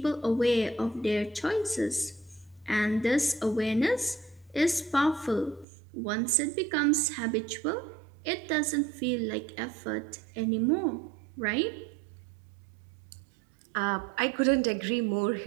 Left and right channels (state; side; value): drops out; left; at 5.7 s